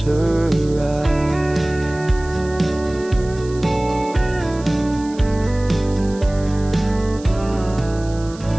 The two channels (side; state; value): right; noise; hiss, 21 dB below the sound